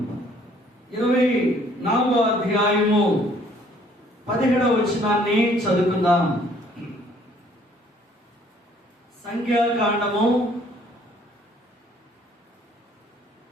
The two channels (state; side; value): normal; both; correlation 0.60